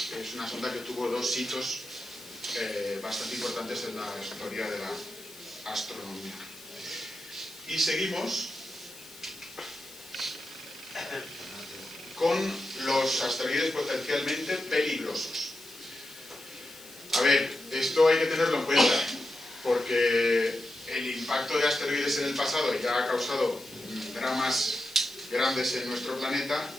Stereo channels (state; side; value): noise; left; hiss, 19 dB below the sound